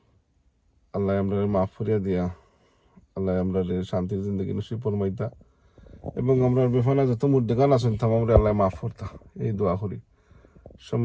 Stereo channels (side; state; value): both; identical; correlation 1.00